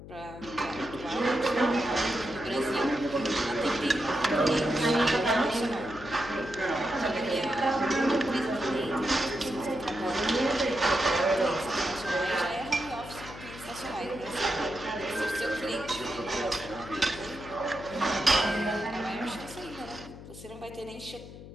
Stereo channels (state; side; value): noise; left; hum, 15 dB below the sound